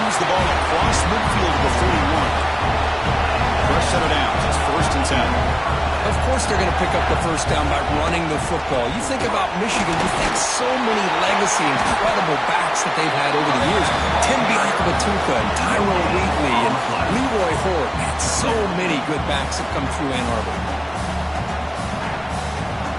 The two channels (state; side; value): identical; both; correlation 1.00